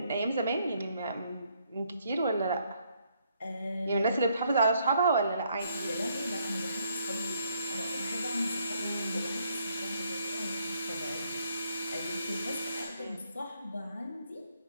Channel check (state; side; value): inverted; both; correlation -0.71